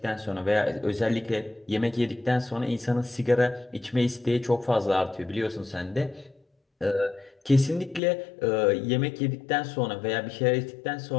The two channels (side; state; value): right; drops out; at 8.0 s